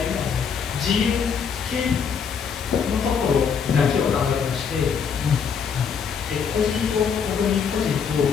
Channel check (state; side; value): quieter; right; 6.7 dB